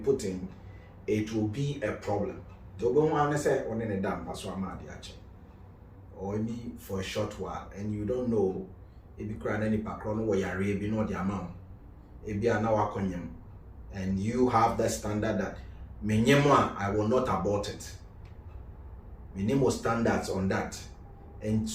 in, it will be a problem. Or maybe for a short while, and you don't know if you cry any background where you're maybe not the amount. If you are now and you have that standard that I will not abort it. Minimum standards on that. And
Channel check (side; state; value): both; identical; correlation 1.00